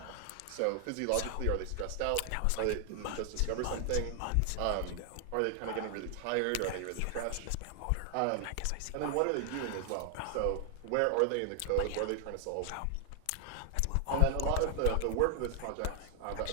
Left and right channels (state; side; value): different; both; correlation 0.00